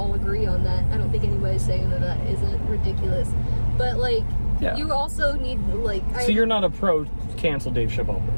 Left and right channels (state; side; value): inverted; both; correlation -1.00